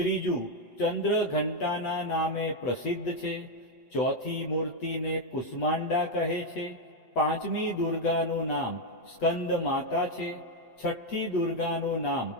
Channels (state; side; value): late; right; 8.2 ms